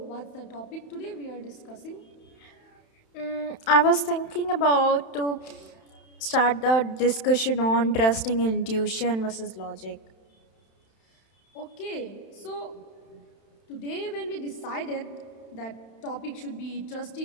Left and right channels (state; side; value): late; right; 31 ms